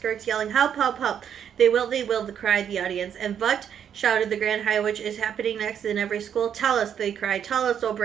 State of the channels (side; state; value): left; quieter; 8.7 dB